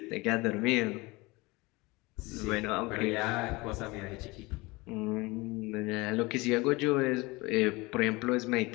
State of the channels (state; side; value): quieter; right; 23.4 dB